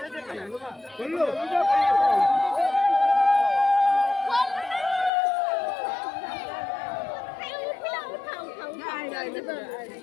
দে খাইবো না বললো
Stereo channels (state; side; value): drops out; right; at 5.1 s